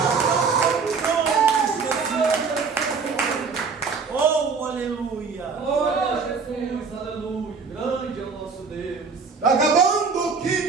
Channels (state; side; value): quieter; left; 5.2 dB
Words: Oh, aleluia. Glória a Jesus. Aleluia. Grande é o nosso Deus. acabando que